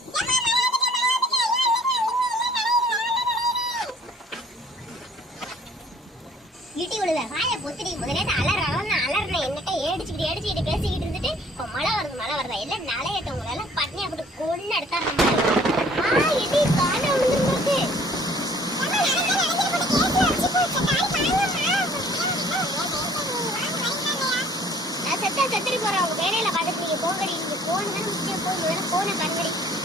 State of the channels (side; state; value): both; normal; correlation 0.55